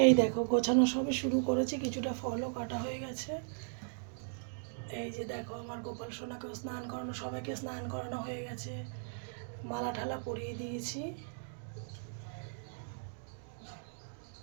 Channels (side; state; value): left; silent; digital silence